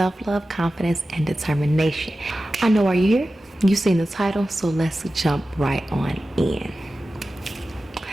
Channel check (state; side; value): normal; both; correlation 0.94